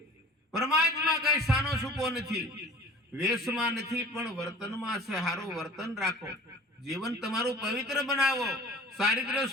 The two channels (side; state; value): both; normal; correlation 0.44